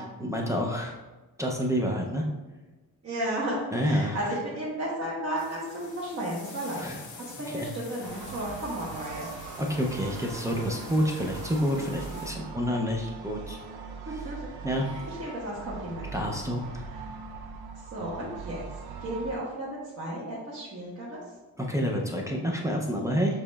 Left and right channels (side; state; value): both; normal; correlation 0.48